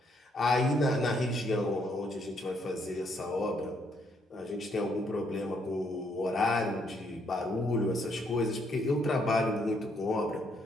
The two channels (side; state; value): both; normal; correlation 0.72